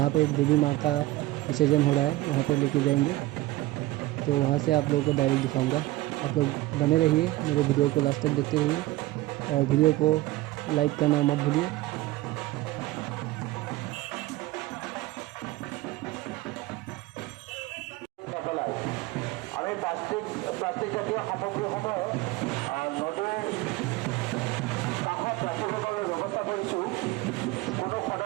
पे देवी माँ का विसर्जन हो रहा है वहाँ पे लेके जाएंगे। तो वहाँ से आप लोगों को डायरेक्ट दिखाऊंगा। आप लोग बने रहिए, मेरे वीडियो को लास्ट तक देखते रहिए और वीडियो को लाइक करना मत भूलिए।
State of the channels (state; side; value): quieter; left; 18.0 dB